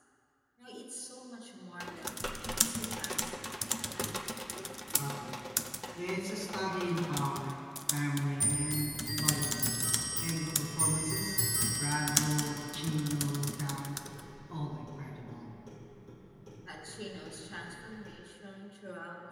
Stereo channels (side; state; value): both; identical; correlation 1.00